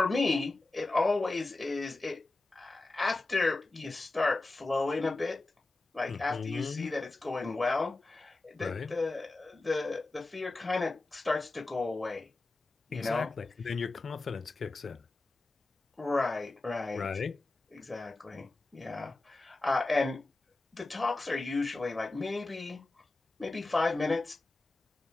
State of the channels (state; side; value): quieter; right; 3.1 dB